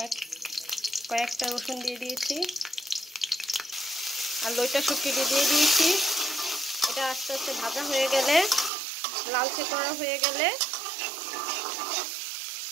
কয়েকটা রসুন দিয়ে দিয়েছি আর লইট্টা শুটকিটি দিয়ে দিয়েছি। এটা আস্তে আস্তে ভাজা হয়ে গেলে, লালচে করা হয়ে গেলে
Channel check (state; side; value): drops out; left; at 8.7 s